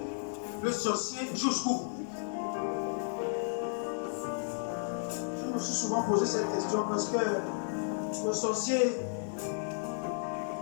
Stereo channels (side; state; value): right; silent; 56 dB below the other